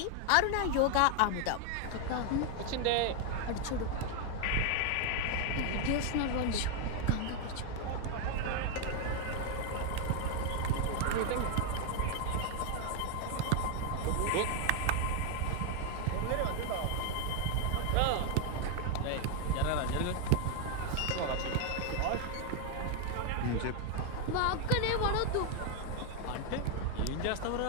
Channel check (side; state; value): both; different; correlation 0.00